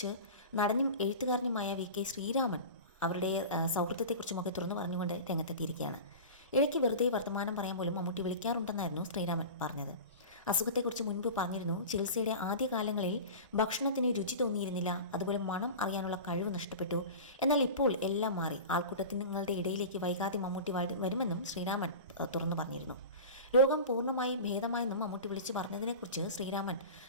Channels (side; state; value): both; inverted; correlation -0.32